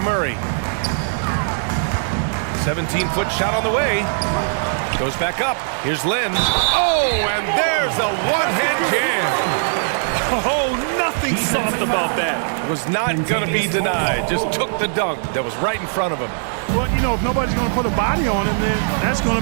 17-foot shot on the way. Goes back up. Here's Len. Oh, and there's a one-hand jam. Oh, nothing soft about that. Was not going to be denied. Just took the dunk that was right in front of him. Well, you know, if nobody's going to put a body on him, then that's going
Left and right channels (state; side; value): silent; left; digital silence